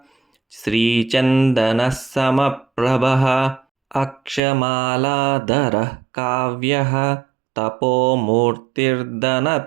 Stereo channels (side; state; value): left; drops out; at 4.4 s